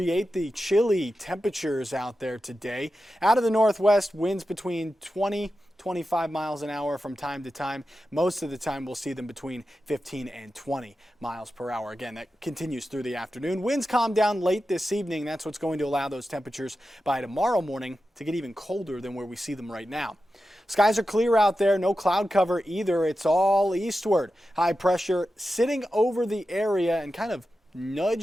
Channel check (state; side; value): normal; both; correlation 0.91